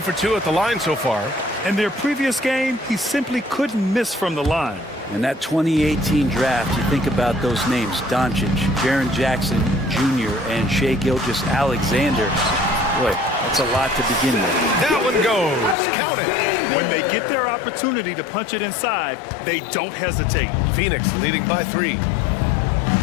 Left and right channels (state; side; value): drops out; right; at 15.8 s